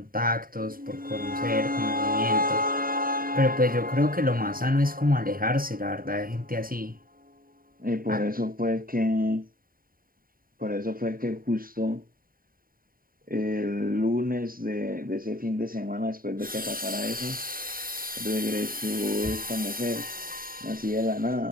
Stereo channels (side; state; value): left; late; 0.41 ms